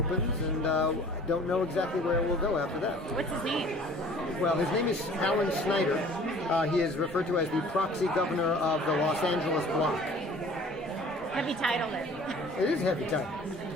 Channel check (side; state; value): both; normal; correlation 0.49